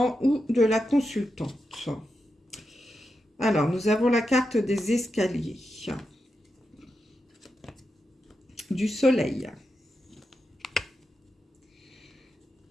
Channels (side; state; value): both; normal; correlation 0.88